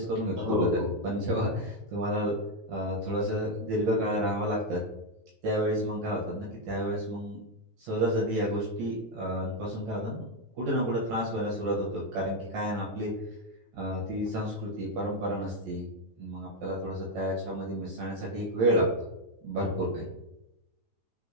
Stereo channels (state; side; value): late; left; 9.2 ms